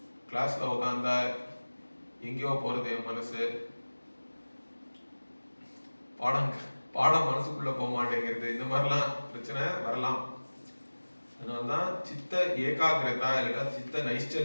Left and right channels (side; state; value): both; inverted; correlation -1.00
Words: கிளாஸ்ல உட்காந்தா எங்கேயோ போறது என் மனசு, பாடம் மனசுக்குள்ள போக மாட்டேங்கிறது, இந்த மாதிரிலாம் பிரச்சனை வரலாம். அதனாலதான் சித்த ஏகாகிரதா இல்லைன்னா சித்த